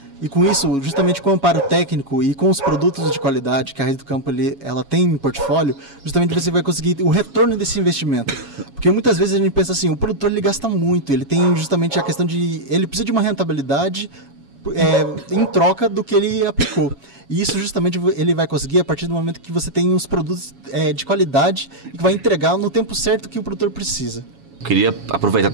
E com isso, justamente com o amparo técnico e com os produtos de qualidade que a Raiz do Campo ela tem em portfólio, justamente você vai conseguir o retorno desse investimento. Porque muitas vezes a gente pensa assim, o produtor ele gasta muito, ele tem justamente a questão de... ele precisa de uma rentabilidade em troca do que ele aplicou. E isso justamente ele vai conseguir a partir do momento que você tem os produtos de qualidade e que vai entregar no tempo certo que o produtor precisa. Queria aproveitar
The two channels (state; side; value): late; left; 7.2 ms